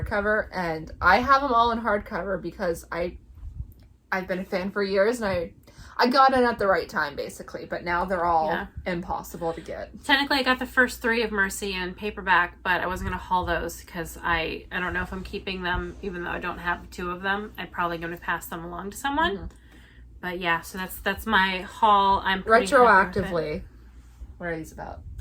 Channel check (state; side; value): identical; both; correlation 1.00